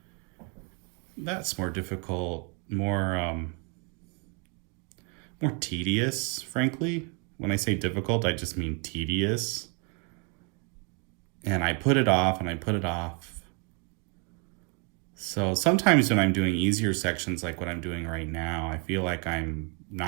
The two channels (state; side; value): quieter; left; 36.5 dB